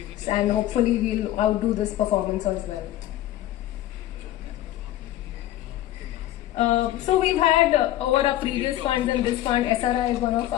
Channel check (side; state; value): right; quieter; 14.1 dB